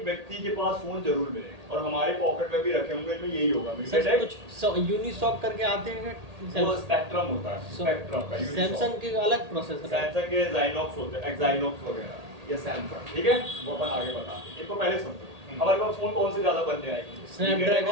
व्यक्ति के पास फोन जरूर मिले, और हमारे पॉकेट में भी रखे होंगे, इनमें यही होगा। सर मीडियाटेक कुछ यूनिसॉक करके आते हैं वो स्पेक्ट्रम होता है, स्पेक्ट्रम का। सैमसंग के अलग प्रोसेसर है। सैमसंग के Exynos होते हैं, Exynos वगैरह, ये सैमसंग। ठीक है, वो अपन आगे बताते हैं, इनको पहले समझो। हमारे पास फोन कौन से ज्यादा बनने आएंगे?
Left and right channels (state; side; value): late; left; 1.8 ms